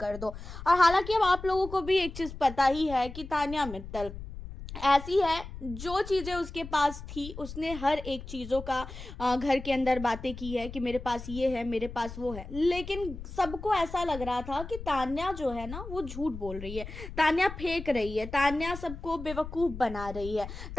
दो। और हालांकि अब आप लोगों को भी एक चीज पता ही है कि तान्या मित्तल ऐसी है, जो चीज़ें उसके पास थी उसने हर एक चीज़ों का घर के अंदर बातें की है कि मेरे पास ये है, मेरे पास वो है। लेकिन सबको ऐसा लग रहा था कि तान्या जो है ना वो झूठ बोल रही है, तान्या फेंक रही है, तान्या सबको बेवकूफ़ बना रही है।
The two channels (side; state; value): left; noise; rumble, 11 dB below the sound